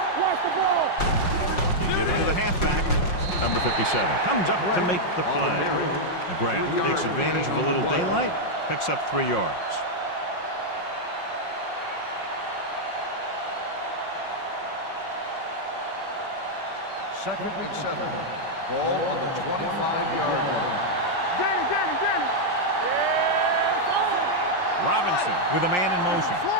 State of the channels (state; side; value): late; right; 5.6 ms